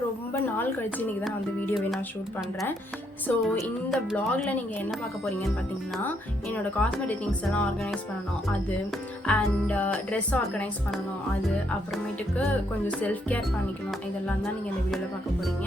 ரொம்ப நாள் கழிச்சு இன்றைக்கி தான் வந்து வீடியோவை நான் ஷூட் பண்ணுறேன். ஸோ இந்த வ்ளாகில் நீங்கள் என்ன பார்க்க போகிறீங்கன்னு பார்த்தீங்கன்னா, என்னோடய காஸ்மெட்டிக் திங்ஸ் எல்லாம் ஆர்கனைஸ் பண்ணணும் அது, அண்ட் ட்ரெஸ் ஆர்கனைஸ் பண்ணணும் அது, அப்புறமேட்டுக்கு கொஞ்சம் செல்ஃப் கேர் பண்ணிக்கணும். இதெல்லாம் தான் நீங்கள் இந்த வீடியோவில் பார்க்க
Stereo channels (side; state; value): both; normal; correlation 0.74